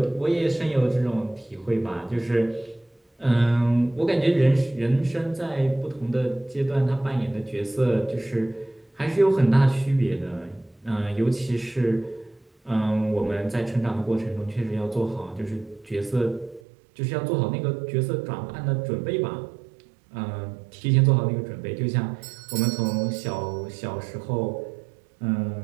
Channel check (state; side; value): drops out; left; at 16.6 s